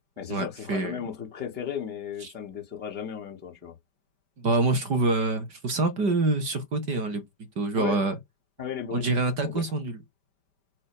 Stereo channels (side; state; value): left; late; 5.1 ms